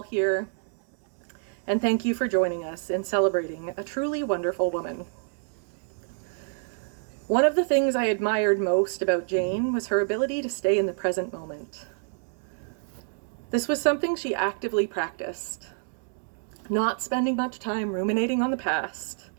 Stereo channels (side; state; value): left; silent; digital silence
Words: here and thank you for joining us in celebrating a truly wonderful woman. One of the things I admired most about Jane was her ability to stay in the present moment. This was something she actively practiced, not spending much time ruminating on the past